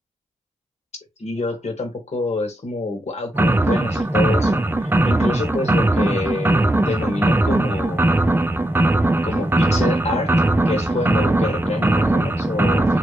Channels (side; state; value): both; normal; correlation 0.83